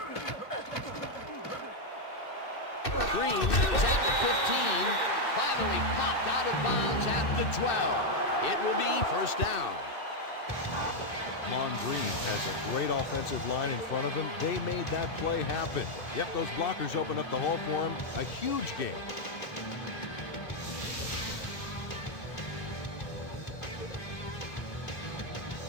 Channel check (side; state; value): right; late; 2.6 ms